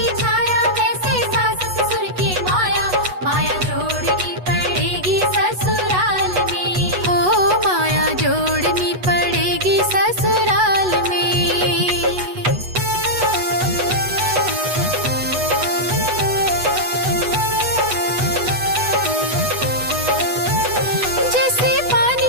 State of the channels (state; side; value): late; left; 8.1 ms